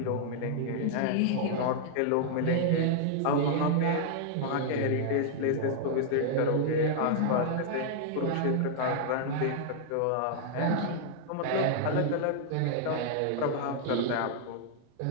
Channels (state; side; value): different; both; correlation -0.01